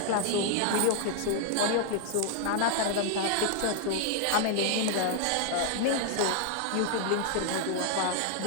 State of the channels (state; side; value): different; both; correlation 0.00